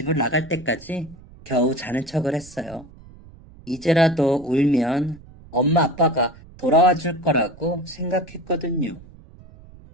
나갈 때까지 겨우 자는 척을 했어요. 이제라도 울면 엄마 아빠가 돌아와 줄 거라고 생각했거든요.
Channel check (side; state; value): right; noise; rumble, 21 dB below the sound